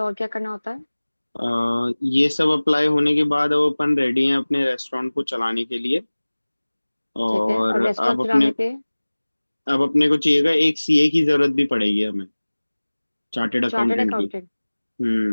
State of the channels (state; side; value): inverted; both; correlation -1.00